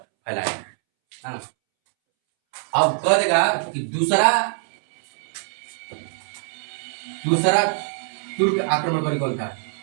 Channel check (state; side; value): silent; left; 63 dB below the other